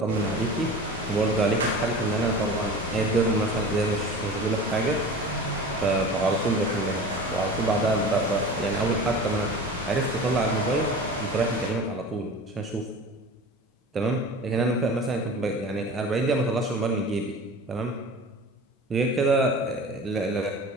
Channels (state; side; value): normal; both; correlation 0.37